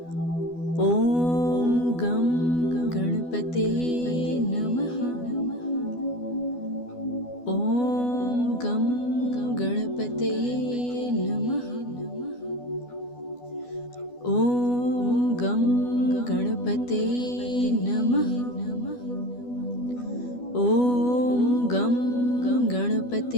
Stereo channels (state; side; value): late; right; 12 ms